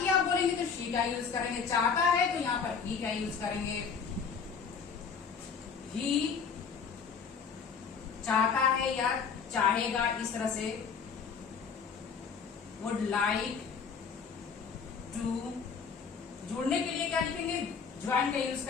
आप बोलेंगे तो शी का यूज करेंगे, चाहता है तो यहां पर ही का यूज करेंगे। ही चाहता है या चाहेगा, इस तरह से वुड लाइक टू। जुड़ने के लिए क्या लिखेंगे, ज्वाइन का यूज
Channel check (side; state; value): right; quieter; 6.0 dB